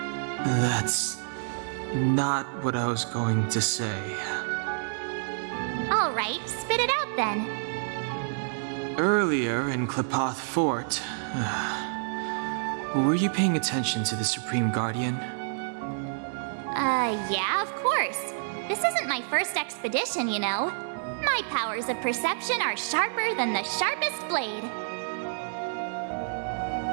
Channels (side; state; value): left; silent; digital silence